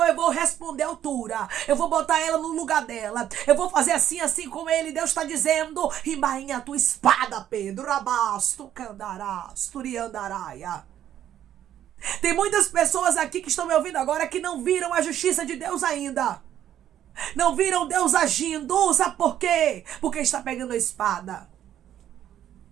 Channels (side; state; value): left; quieter; 11.0 dB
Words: eu vou responder à altura. Eu vou botar ela no lugar dela. Eu vou fazer assim, assim como ele. Deus está dizendo: embainha a tua espada, Pedro. Rabasto, candarasto, riandaraia. Tem muitas pessoas aqui que estão me ouvindo agora que não viram a justiça de Deus ainda. Não viram Deus agindo. Sabe por quê? Porque está pegando a espada.